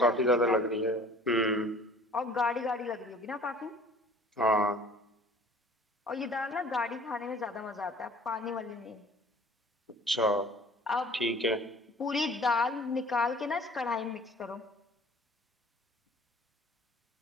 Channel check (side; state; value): both; normal; correlation 0.50